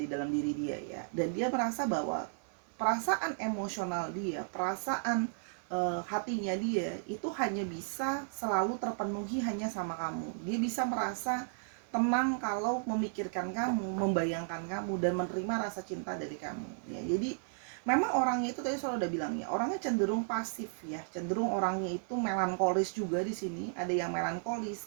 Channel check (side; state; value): left; silent; 55 dB below the other